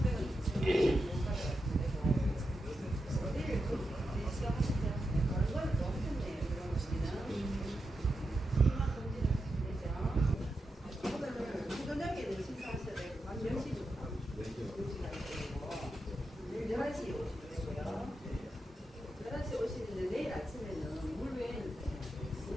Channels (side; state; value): both; normal; correlation 0.88